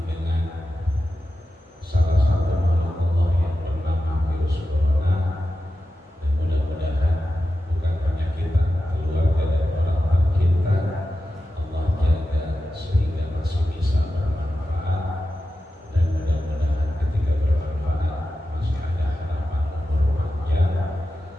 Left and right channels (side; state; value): both; normal; correlation 0.91